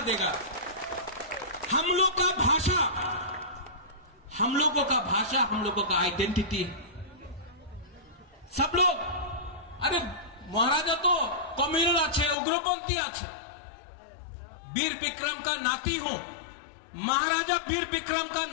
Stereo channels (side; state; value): right; drops out; at 12.4 s